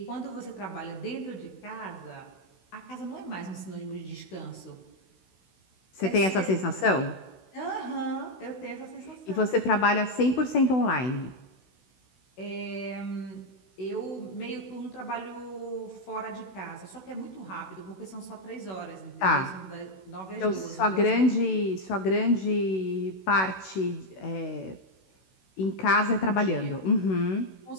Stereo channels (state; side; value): late; right; 16 ms